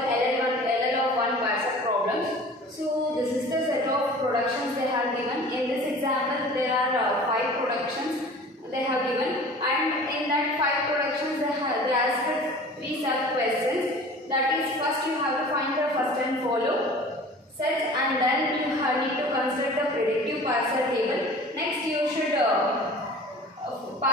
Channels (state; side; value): normal; both; correlation 0.43